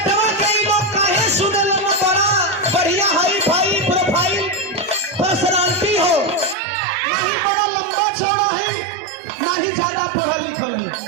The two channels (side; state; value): left; drops out; at 6.6 s